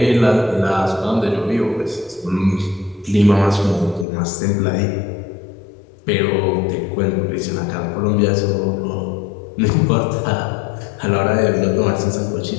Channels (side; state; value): right; drops out; at 4.0 s